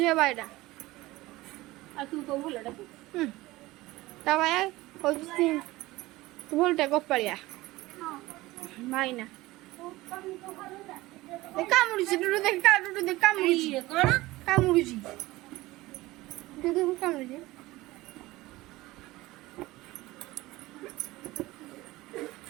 ବାଇଟା ଆଉ ତୁ ତ ଭଲଟା ତା ବାୟା ହଉଛି ତୁ ଭଲଟା ଗୋପାଳିଆ ଭାଇନା କାମୁଡୁଛି କାମୁଡୁଛି କଣ କାମୁଡୁଛି କାମୁଡୁଛି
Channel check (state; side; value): quieter; left; 19.0 dB